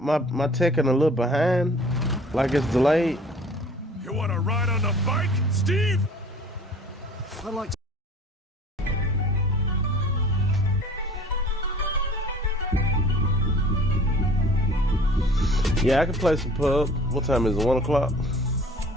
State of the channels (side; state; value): both; normal; correlation 0.48